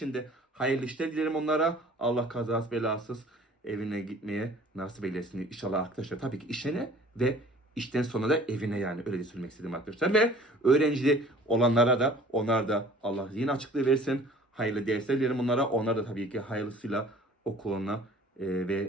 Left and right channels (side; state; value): both; normal; correlation 0.50